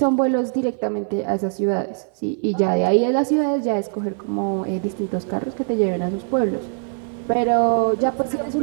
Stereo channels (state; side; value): silent; left; 58 dB below the other